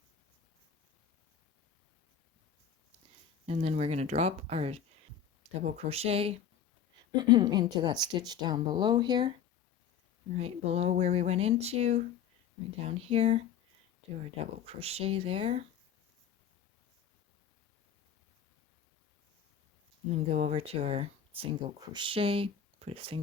and then we're going to drop our double crochet into that stitch down below here, right below where we went into, right down here, do our double crochet there, and then go over to our single crochet, put a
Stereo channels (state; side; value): quieter; right; 8.2 dB